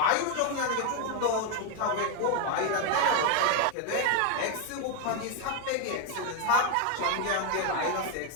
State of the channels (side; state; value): both; different; correlation 0.01